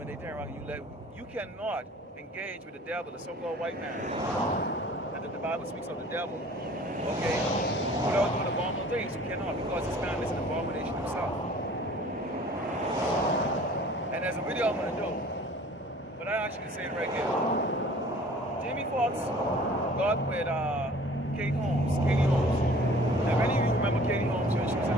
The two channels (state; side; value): normal; both; correlation 0.49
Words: they turn around. You cannot engage with the devil, the so-called white man. The Bible speaks of the devil. Okay, without doing abominable things, you cannot, because this man is an abomination himself. And there's a video I'm going to do, but I actually can say it right here. Jamie Foxx got with Katie Holmes. Now, if any of you remember Katie Holmes when she was in